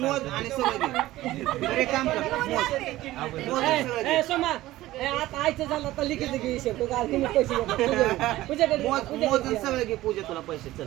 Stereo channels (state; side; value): quieter; left; 16.3 dB